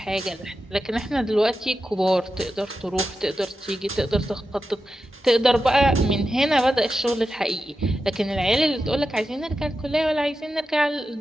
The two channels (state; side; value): normal; both; correlation 0.90